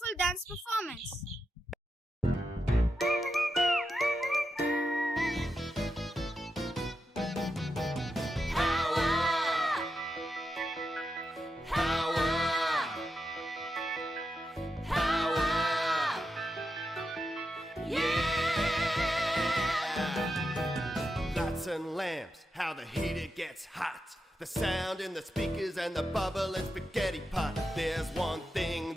dance performance. And lamps, how the heater gets hot, the sound in the speakers and the bubble and spaghetti pot. There's one thing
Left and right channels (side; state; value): both; normal; correlation 0.87